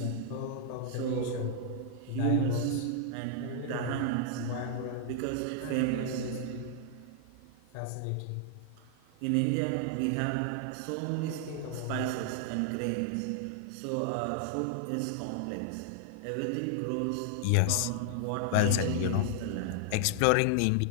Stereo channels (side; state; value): both; different; correlation 0.00